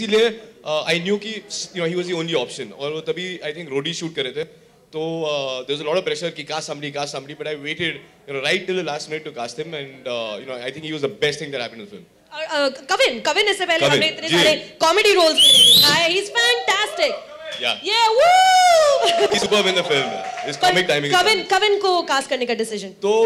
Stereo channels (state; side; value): identical; both; correlation 1.00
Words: I knew कि he was the only option. और वो तभी I think रोडी shoot कर रहे थे. तो there was a lot of pressure कि cast somebody, but I waited right till the last minute to cast him, and I think he was the best thing that happened in the film. Kavin इससे पहले हमने इतने सारे comedy roles किए. He's fantastic. Yeah, woo! He's superb in the film. His comic timing. Kavin को cast करने का decision.